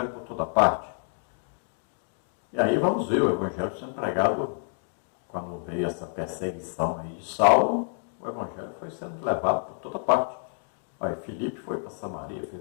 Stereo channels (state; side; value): silent; right; 59 dB below the other